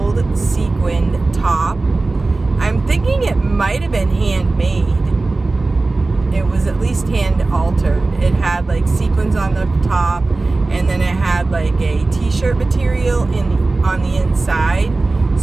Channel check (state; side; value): quieter; left; 3.4 dB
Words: sequined top. I'm thinking it might have been handmade. It was at least hand altered. It had like sequins on the top, and then it had like a t-shirt material on the inside.